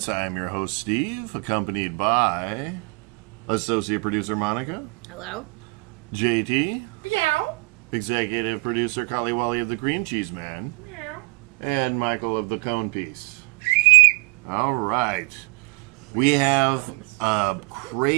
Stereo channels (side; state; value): left; quieter; 28.1 dB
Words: I am your host Steve, accompanied by associate producer Monica, Hello. JT, Meow. executive producer Kaliwali of the Green Cheese Man, Meow. and Michael of the Cone Piece. All right, we have a